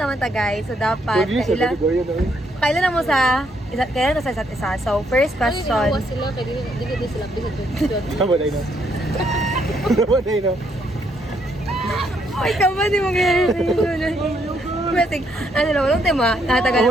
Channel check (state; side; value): normal; both; correlation 0.73